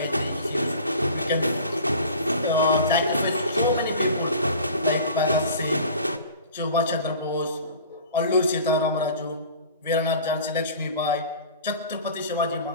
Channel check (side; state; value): both; inverted; correlation -0.43